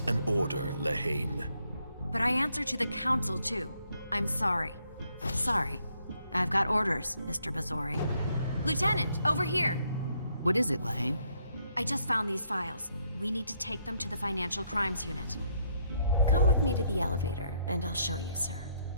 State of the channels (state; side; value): inverted; both; correlation -0.72